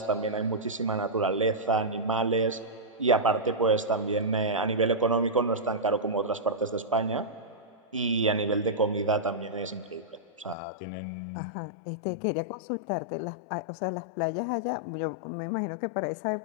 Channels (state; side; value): drops out; right; at 10.6 s